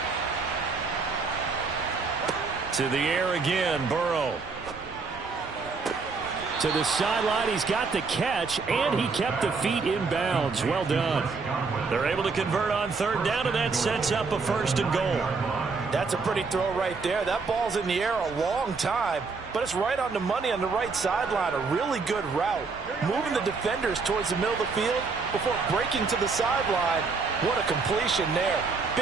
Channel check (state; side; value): quieter; left; 4.5 dB